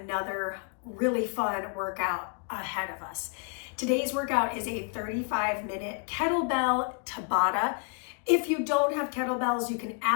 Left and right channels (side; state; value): right; quieter; 37.9 dB